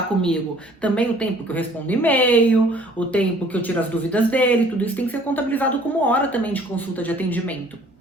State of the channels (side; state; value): both; normal; correlation 0.55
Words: comigo. Também o tempo que eu respondo e-mail, o tempo que eu tiro as dúvidas dele, tudo isso tem que ser contabilizado como hora também de consulta de atendimento,